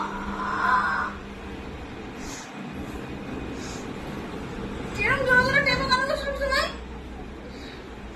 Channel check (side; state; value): both; identical; correlation 1.00